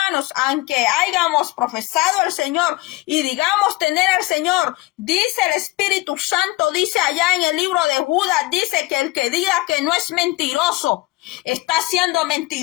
aunque hayamos profesado al Señor y digamos tener al Señor, dice el Espíritu Santo, dice allá en el libro de Judas, dice que el que diga que no es mentiroso, está siendo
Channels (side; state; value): right; quieter; 20.2 dB